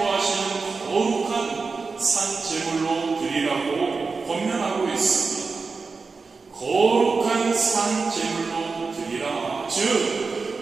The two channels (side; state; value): left; quieter; 4.5 dB